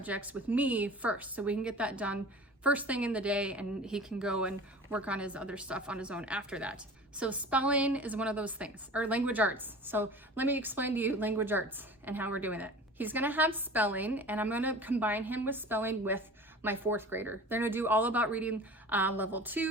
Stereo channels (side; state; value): both; normal; correlation 0.39